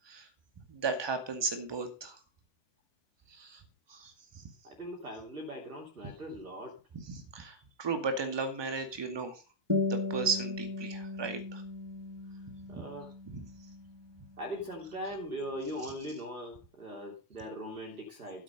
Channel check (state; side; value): late; left; 1.2 ms